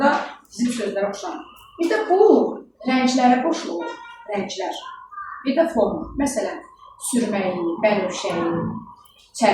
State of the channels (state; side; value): identical; both; correlation 1.00